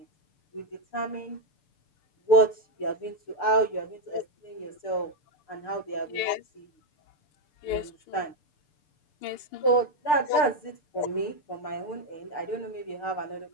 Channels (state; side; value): late; right; 6.7 ms